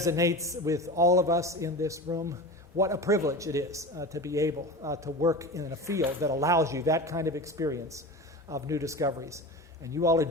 with all of us in this room. What a privilege it is to be able to work in a field that allows you that kind of experience of new discoveries. And you all are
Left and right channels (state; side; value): normal; both; correlation 0.30